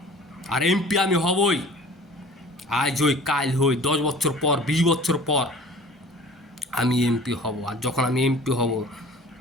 আর এমপি আমি হবই, আজ হই কাল হই, 10 বছর পর, 20 বছর পর আমি এমপি হব। আর যখন আমি এমপি হব,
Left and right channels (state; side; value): normal; both; correlation 0.45